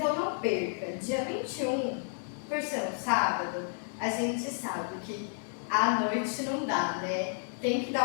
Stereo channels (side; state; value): right; silent; 56 dB below the other